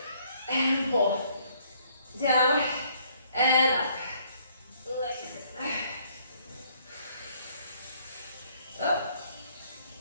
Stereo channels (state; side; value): inverted; both; correlation -0.65